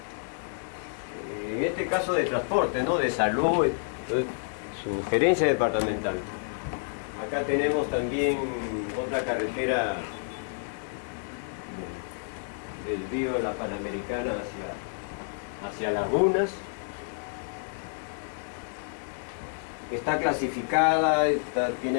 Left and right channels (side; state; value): right; silent; 57 dB below the other